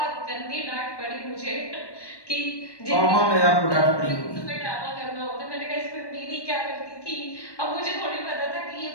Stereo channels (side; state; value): right; late; 1.1 ms